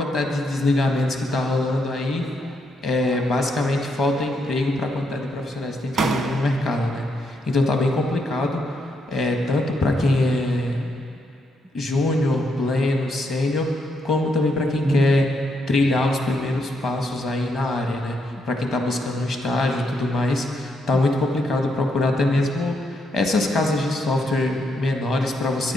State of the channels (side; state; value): both; normal; correlation 0.78